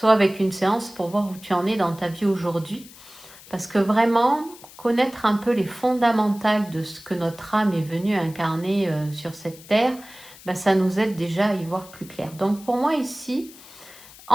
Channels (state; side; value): noise; left; hiss, 20 dB below the sound